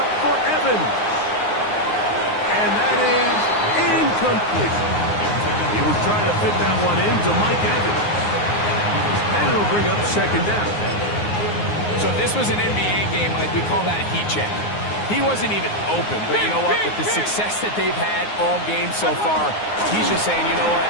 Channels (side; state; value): right; late; 9.6 ms